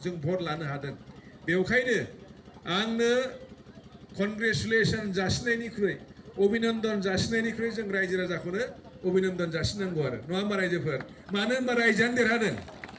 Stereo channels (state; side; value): identical; both; correlation 1.00